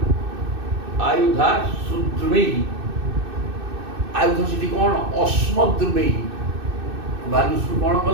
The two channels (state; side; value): late; left; 2.6 ms